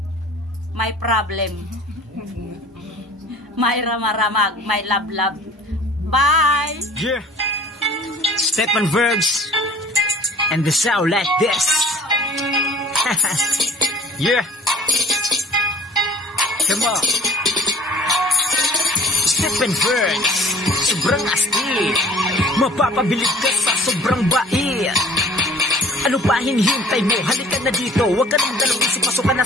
my problem. My ramaramag, my love. Bye! Yeah! Stephen Berg's and the sound like this. Yeah! Come on! Stephen Berg's, sobrang astig. Mapapabilib ka sa sobrang bait. Ano pa hinihintay mo? Halika na dito. Huwag ka nang dalawang isip, pasok ka na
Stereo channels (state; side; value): normal; both; correlation 0.49